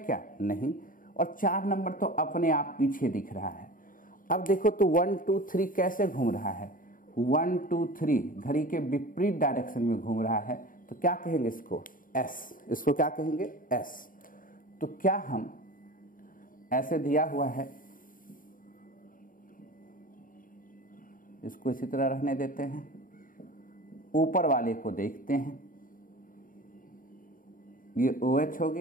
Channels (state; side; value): late; right; 0.40 ms